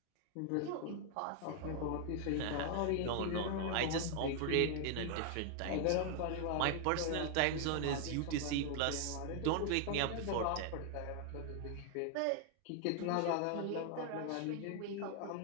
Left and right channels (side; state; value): both; different; correlation 0.00